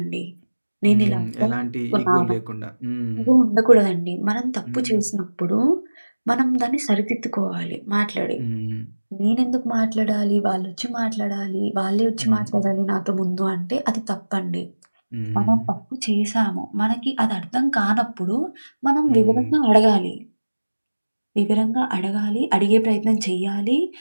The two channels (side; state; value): both; inverted; correlation -1.00